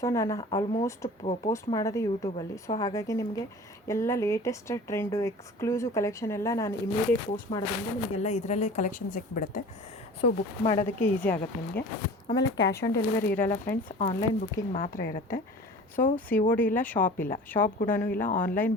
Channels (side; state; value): both; normal; correlation 0.41